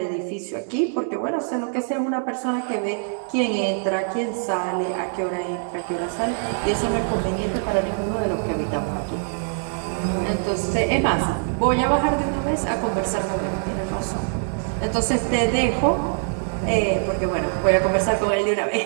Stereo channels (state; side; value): silent; left; 60 dB below the other